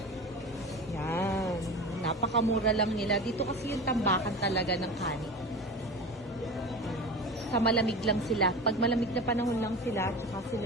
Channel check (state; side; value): normal; both; correlation 0.30